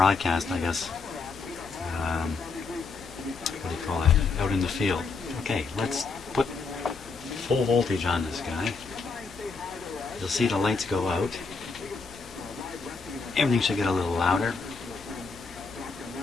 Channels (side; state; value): right; quieter; 4.5 dB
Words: I guess. What do you call it? Out in the field. Okay, let's put full voltage on this guy. You'll see the lights go out. Everything should get a little louder.